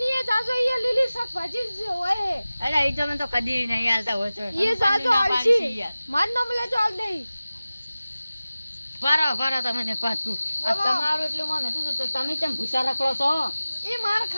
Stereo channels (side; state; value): both; inverted; correlation -0.97